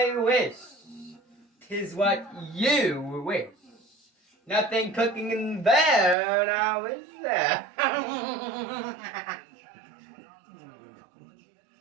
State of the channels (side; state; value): left; drops out; at 6.2 s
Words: wish. 'Tis what you wish. Nothing cooking in there now, is there?